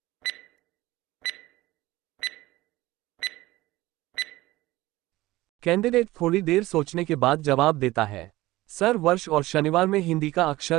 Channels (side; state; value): left; quieter; 18.2 dB